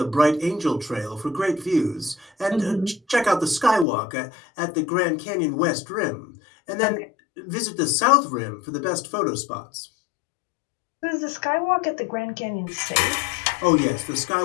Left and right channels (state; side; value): drops out; right; at 3.9 s